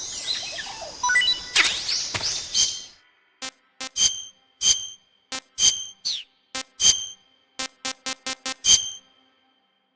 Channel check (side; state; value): both; identical; correlation 1.00